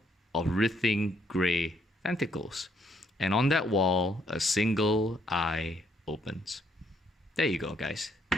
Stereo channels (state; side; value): normal; both; correlation 0.71